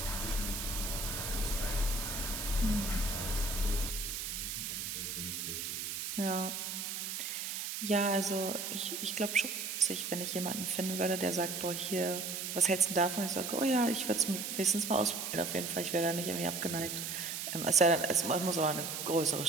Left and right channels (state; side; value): noise; right; hiss, 4 dB below the sound